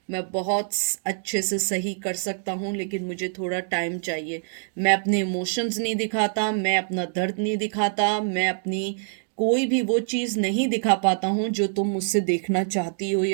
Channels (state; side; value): silent; left; digital silence